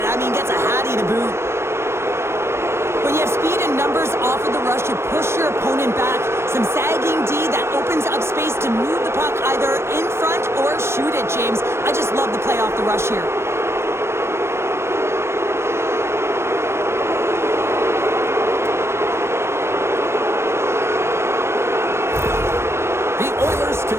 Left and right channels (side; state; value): left; late; 0.12 ms